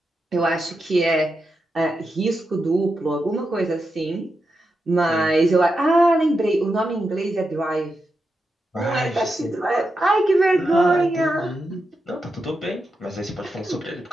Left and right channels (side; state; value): both; normal; correlation 0.87